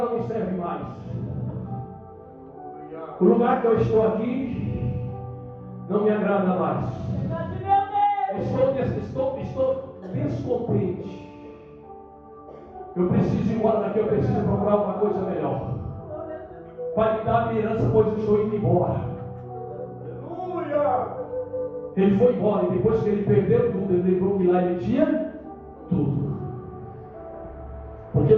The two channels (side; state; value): both; identical; correlation 1.00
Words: me serve mais. O lugar que eu estou aqui não me agrada mais. Estou descontente. Eu preciso ir embora daqui, eu preciso procurar uma coisa melhor. Pai, me dá a minha herança, pois eu estou indo embora. Aleluia! Ele foi embora e depois que ele perdeu tudo, ele lembrou que lá ele tinha tudo. Porque